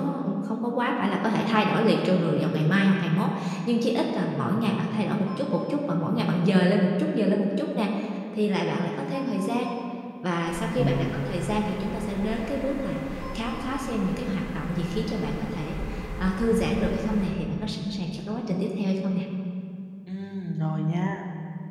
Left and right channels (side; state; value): both; identical; correlation 1.00